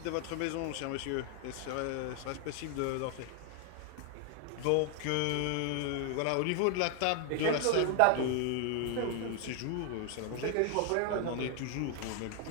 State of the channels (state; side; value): different; both; correlation 0.00